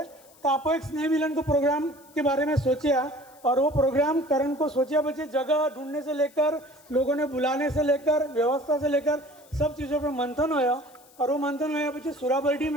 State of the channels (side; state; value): left; noise; hiss, 27 dB below the sound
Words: तो आपको एक स्नेह मिलन को प्रोग्राम के बारे में सोचा, और वो प्रोग्राम करण को सोचा बच्चे जगह ढूंढने से लेकर लोगों ने बुलाने से लेकर व्यवस्था से लेकर सब चीज़ों पर मंथन होया। और वो मंथन होया बच्चे सुराबर्डी